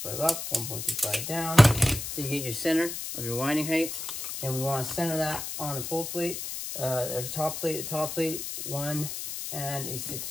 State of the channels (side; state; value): left; noise; hiss, 6 dB below the sound